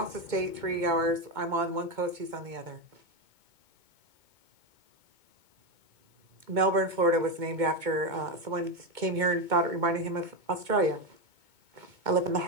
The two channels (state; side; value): late; left; 2.2 ms